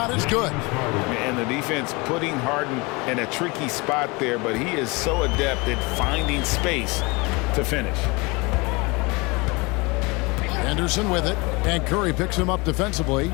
is good. And the defense putting Harden in a tricky spot there, but he is so adept at finding space to finish. Henderson with it, and Curry picks him up defensively.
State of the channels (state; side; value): quieter; right; 26.3 dB